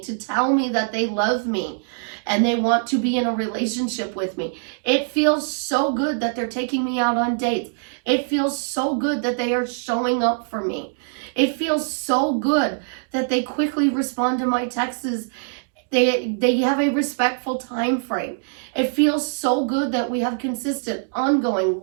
to tell me that they love me and they want to be in a relationship with me. It feels so good that they're taking me out on dates. It feels so good that they are showing up for me. It feels so good that they quickly respond to my texts. They have a respectful time frame. It feels so good that we have consistent, ongoing,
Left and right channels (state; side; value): silent; left; digital silence